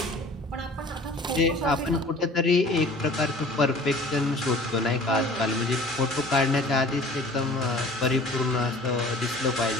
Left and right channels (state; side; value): normal; both; correlation 0.47